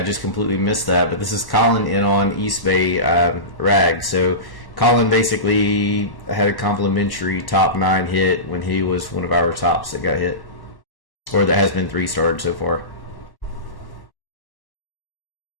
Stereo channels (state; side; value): late; right; 1.1 ms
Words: just completely missed that, but this is Colin in on East Bay Rag. So Colin basically had a complimentary top 9 hit when he was one of our tops that got hit. Or that has been 3-starred so far.